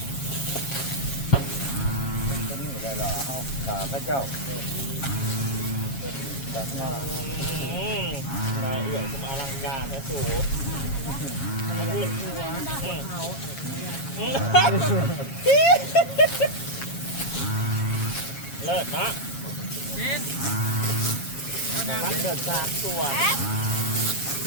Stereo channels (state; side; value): late; right; 7.3 ms